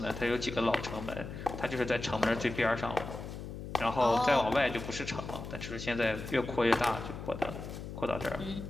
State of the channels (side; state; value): left; noise; hum, 9 dB below the sound